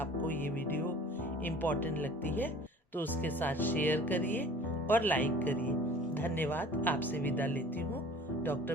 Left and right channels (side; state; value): both; normal; correlation 0.46